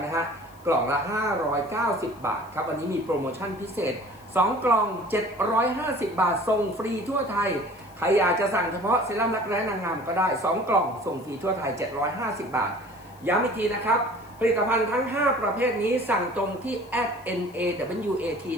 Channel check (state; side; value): noise; left; hiss, 28 dB below the sound